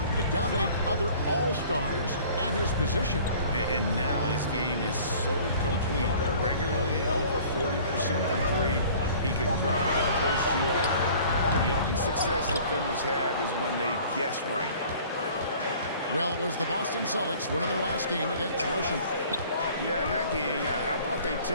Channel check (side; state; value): both; inverted; correlation -0.49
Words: to dominate other all-stars at his position. And now his game is so complete. Regularly over 40% from three. He can drive it, post you up. The only success defenders have is when they guess right. Well, it was the Boston Celtics winning their last game against Washington. Yeah, in that game, I thought they